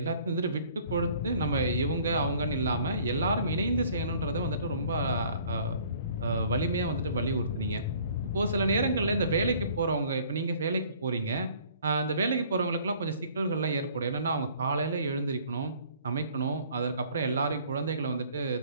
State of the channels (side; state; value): both; inverted; correlation -0.55